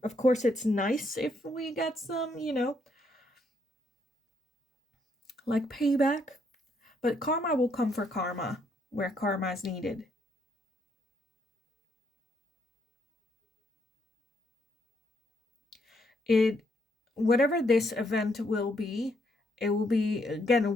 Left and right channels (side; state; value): both; normal; correlation 0.74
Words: Of course it's nice if we get some, you know, like payback, but karma will come for karma where karma is needed. Whatever this event will be, it will be,